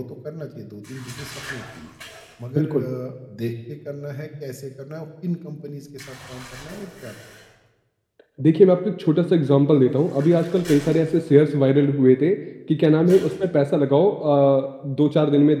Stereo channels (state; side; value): identical; both; correlation 1.00